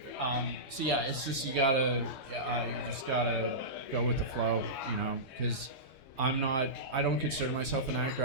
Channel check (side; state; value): right; late; 3.2 ms